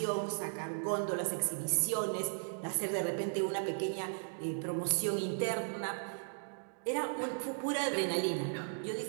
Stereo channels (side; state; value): left; silent; digital silence